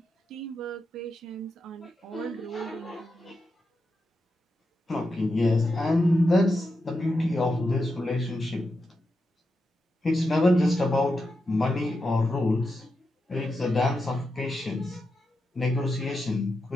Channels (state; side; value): normal; both; correlation 0.87